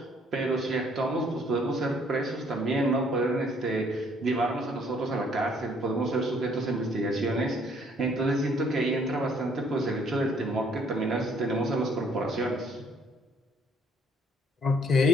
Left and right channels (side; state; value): both; normal; correlation 0.63